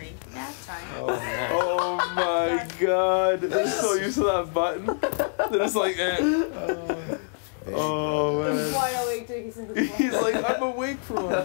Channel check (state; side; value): silent; right; 61 dB below the other